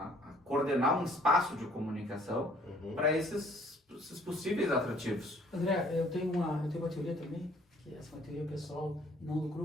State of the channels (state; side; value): normal; both; correlation 0.59